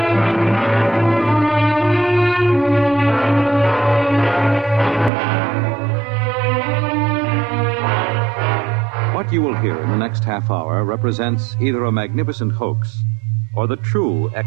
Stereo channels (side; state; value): left; drops out; at 5.1 s